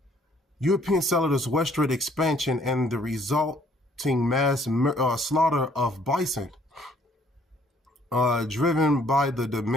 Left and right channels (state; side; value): normal; both; correlation 0.62